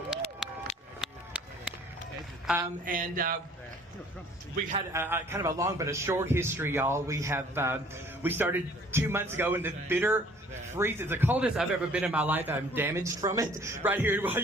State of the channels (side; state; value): both; normal; correlation 0.55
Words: We've had kind of a long but a short history, y'all. We started 2 months ago in the bitter freeze. It's the coldest I've ever been in my life. I'm damaged from it right here in